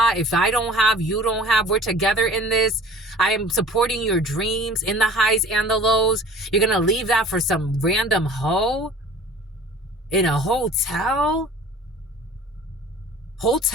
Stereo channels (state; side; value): normal; both; correlation 0.45